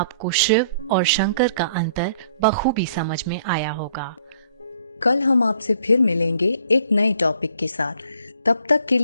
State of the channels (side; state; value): both; inverted; correlation -0.61